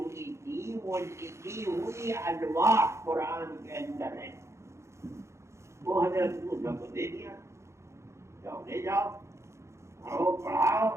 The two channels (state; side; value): late; left; 0.14 ms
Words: تھی وہ لکھی ہوئی الواح قرآن کے اندر ہے. وہ حضرت موسیٰ کو دے دیا، جاؤ لے جاؤ، پڑھو پڑھاؤ.